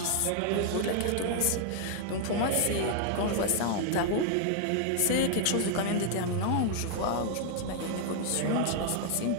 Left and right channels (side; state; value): both; different; correlation 0.00